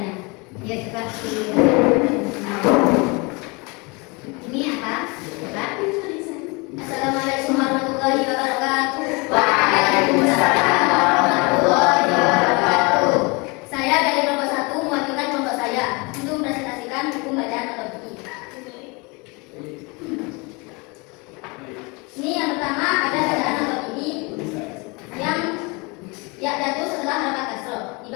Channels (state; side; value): quieter; right; 28.3 dB